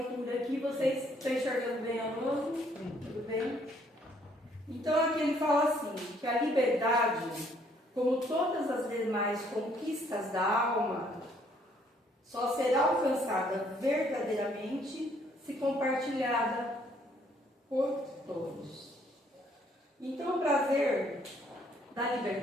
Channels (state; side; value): normal; both; correlation 0.65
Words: aqui. Vocês estão enxergando bem a luz? Tudo bem? Então, aqui ele fala assim, que a liberdade, como todas as demais conquistas da alma, só será alcançada verdadeiramente se compartilhada por todos. Então, o prazer da